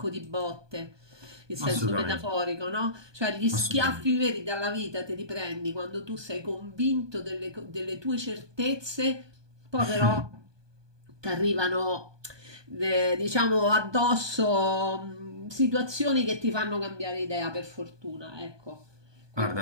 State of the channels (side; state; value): left; late; 1.2 ms